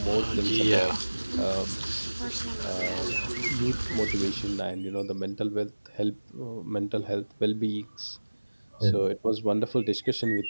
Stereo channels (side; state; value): both; inverted; correlation -1.00